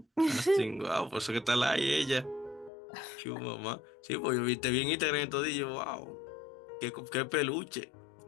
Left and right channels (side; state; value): right; drops out; at 2.7 s